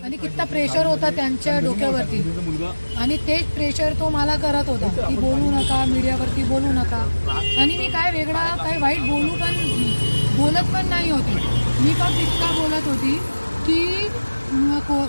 आणि किती प्रेशर होता त्यांच्या डोक्यावरती, आणि तेच प्रेशर तो मला करत होता की बोलू नका, मीडियावरती बोलू नका. आणि मी काय वेगळा काय वाईट बोलत पण नाही होती. मी फक्त इतका बोलत होती की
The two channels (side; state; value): both; inverted; correlation -1.00